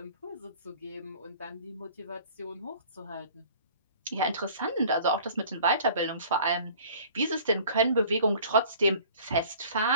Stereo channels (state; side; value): inverted; both; correlation -0.49